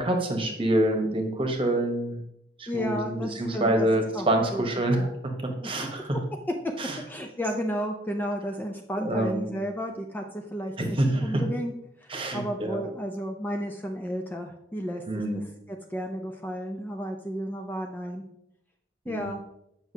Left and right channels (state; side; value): normal; both; correlation 0.63